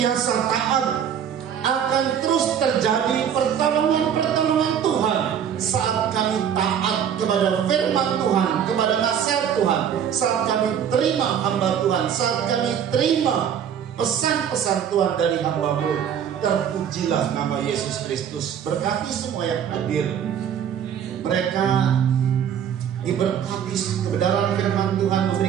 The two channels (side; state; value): left; quieter; 8.7 dB